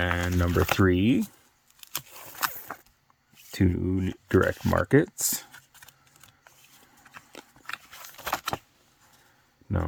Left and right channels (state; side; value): identical; both; correlation 1.00